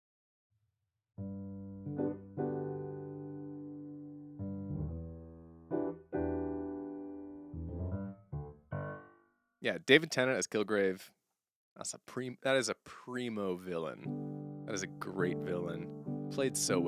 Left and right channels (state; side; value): identical; both; correlation 1.00